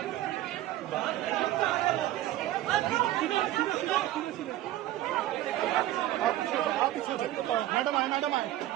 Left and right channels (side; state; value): left; quieter; 14.4 dB